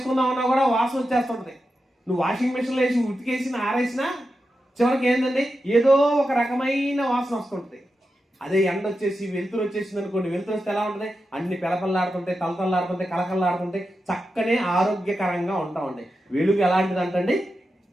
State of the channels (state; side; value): normal; both; correlation 0.89